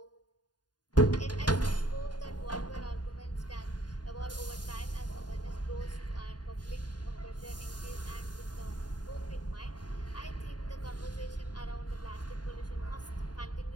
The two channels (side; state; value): right; late; 0.70 ms